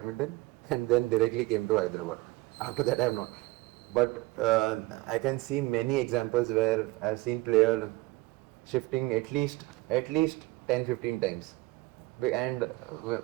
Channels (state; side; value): quieter; left; 21.1 dB